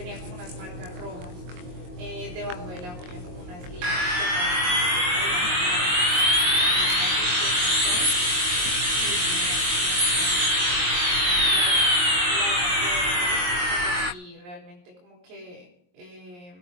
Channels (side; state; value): left; late; 22 ms